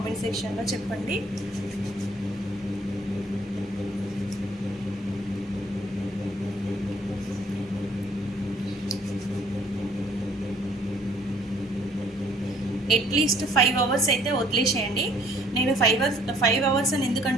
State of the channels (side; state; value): both; normal; correlation 0.60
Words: సెక్షన్లో చెప్పండి. అట్లీస్ట్ 5 అవర్స్ అయితే వదిలేసేయండి. నేను 5 అవర్స్ అని ఎందుకు